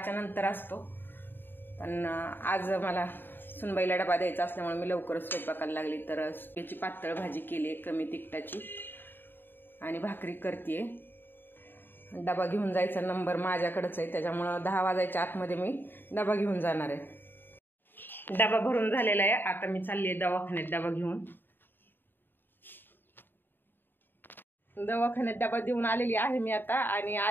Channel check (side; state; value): right; late; 0.096 ms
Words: नंतर असतो, पण आज मला सुनबाईला डबा द्यायचा असल्यामुळे मी लवकरच स्वयंपाकाला लागली। तर याची पातळ भाजी केली कमी तिखटाची आणि भाकरी करते। डबा घेऊन जायचा नंबर माझ्याकडेच आहे, त्याच्यामुळे 10 वाजायच्या आतमध्ये मी डबा घेऊन जाणार आहे। डबा भरून झालेला आहे, आता मी चालली आहे दवाखान्यात डबा घेऊन। दवाखान्यात डबा देऊन आलेली आहे मी आता, आणि